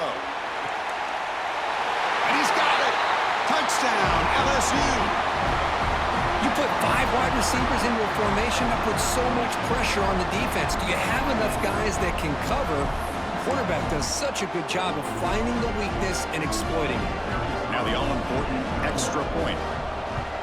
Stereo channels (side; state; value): both; identical; correlation 1.00